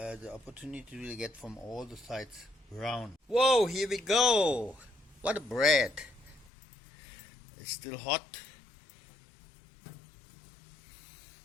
opportunity to really get from all the sides brown. Whoa, here we go! What a bread! It's still hot.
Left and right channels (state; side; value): drops out; right; at 6.5 s